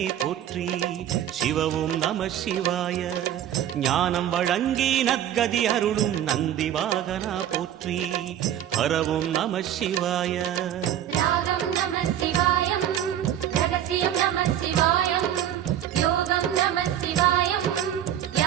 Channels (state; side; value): quieter; left; 10.9 dB